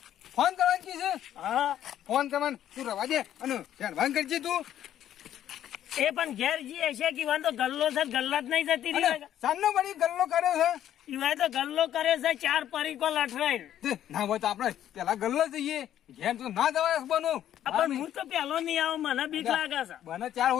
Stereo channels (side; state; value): right; quieter; 11.2 dB